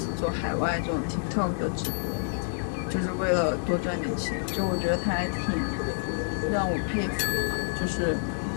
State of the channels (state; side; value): silent; right; digital silence